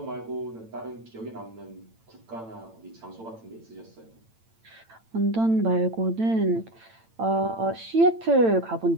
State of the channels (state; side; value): late; left; 8.9 ms